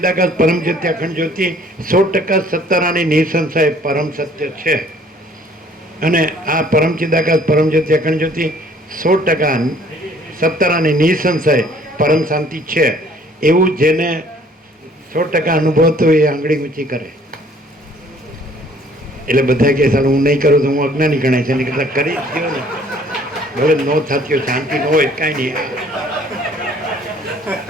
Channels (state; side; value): normal; both; correlation 0.58